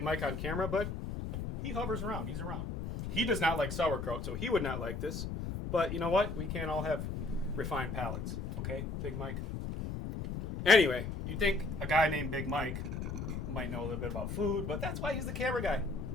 Mike on camera, but he hovers around. He's around. He does not like sauerkraut, so he would not like this. But you know what? We can't all have refined palates. Okay, Big Mike? Anyway, you'd think a guy named Big Mike might know a little bit about food, but that's why he's the camera guy.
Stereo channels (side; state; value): left; noise; rumble, 4 dB below the sound